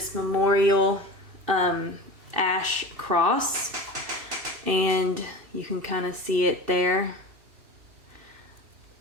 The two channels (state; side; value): late; left; 2.7 ms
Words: memorial ash cross, and you can kind of see it there.